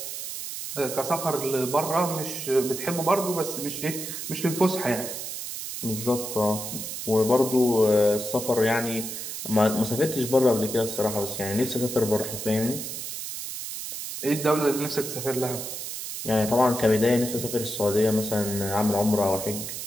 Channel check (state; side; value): noise; right; hiss, 7 dB below the sound